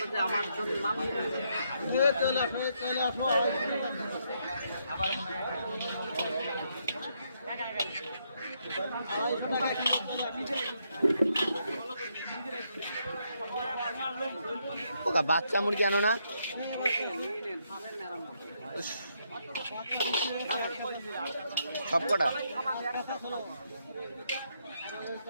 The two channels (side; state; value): both; inverted; correlation -0.76